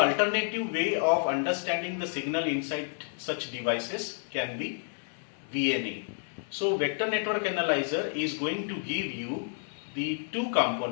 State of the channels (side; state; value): right; silent; 58 dB below the other